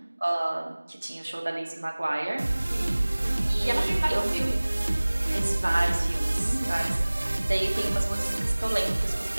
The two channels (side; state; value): both; inverted; correlation -1.00